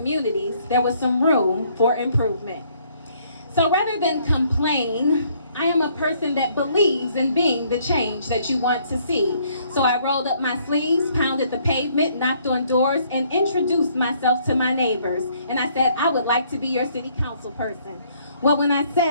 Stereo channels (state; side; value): inverted; both; correlation -0.65